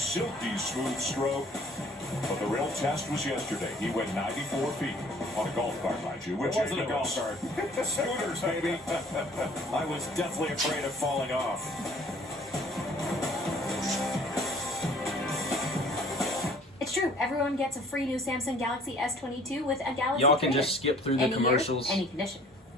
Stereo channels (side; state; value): both; normal; correlation 0.54